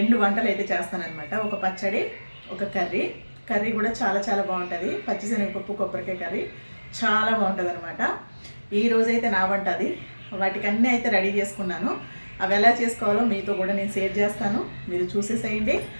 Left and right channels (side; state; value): both; inverted; correlation -1.00